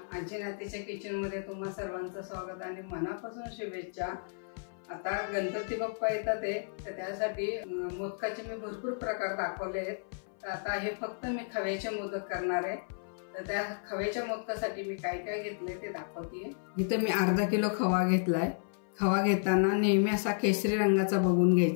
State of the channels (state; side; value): silent; right; 56 dB below the other